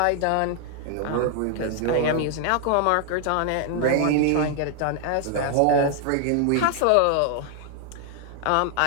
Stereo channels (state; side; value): different; both; correlation 0.00